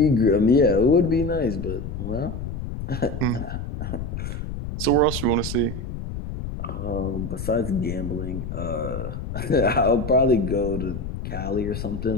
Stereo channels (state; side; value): noise; left; rumble, 6 dB below the sound